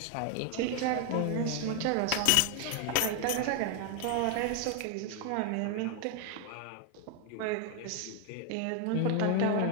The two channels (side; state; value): both; different; correlation 0.00